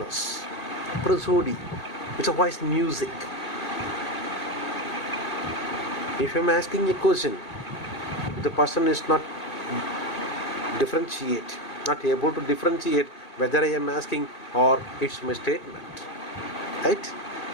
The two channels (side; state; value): right; late; 2.5 ms